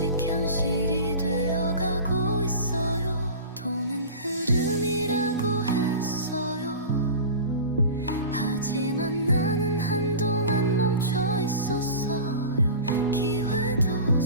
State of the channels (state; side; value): inverted; both; correlation -0.34